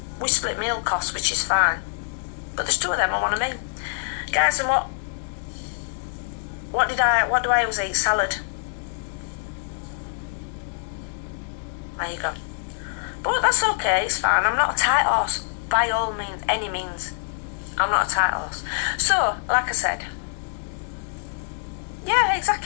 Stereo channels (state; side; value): silent; right; digital silence